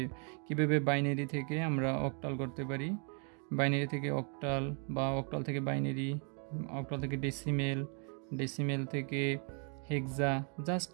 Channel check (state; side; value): quieter; left; 39.8 dB